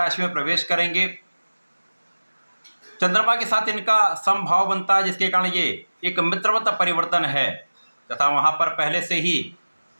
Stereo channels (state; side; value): inverted; both; correlation -1.00